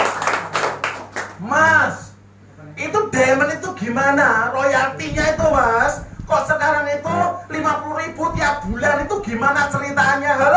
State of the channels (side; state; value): both; identical; correlation 1.00